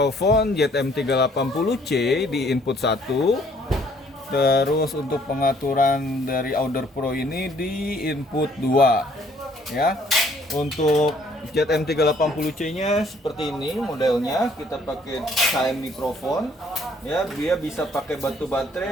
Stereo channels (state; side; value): normal; both; correlation 0.62